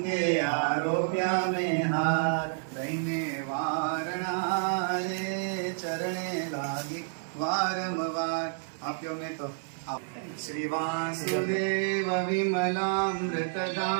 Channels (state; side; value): silent; left; digital silence